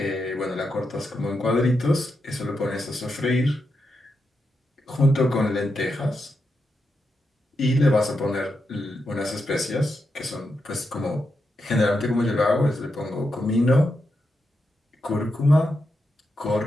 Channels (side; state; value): both; normal; correlation 0.85